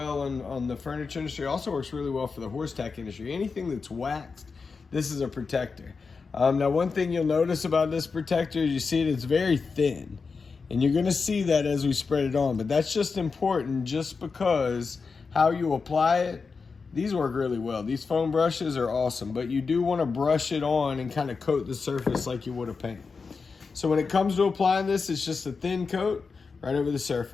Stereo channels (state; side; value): quieter; right; 4.8 dB